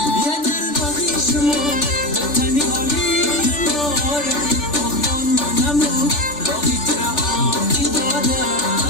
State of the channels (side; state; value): right; late; 3.4 ms